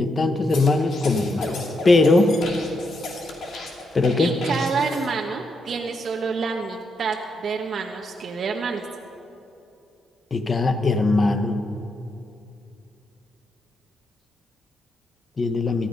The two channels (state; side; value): normal; both; correlation 0.80